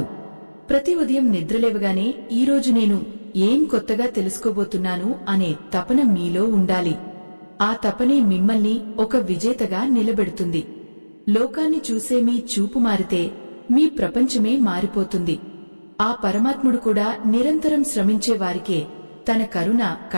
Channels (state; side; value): inverted; both; correlation -1.00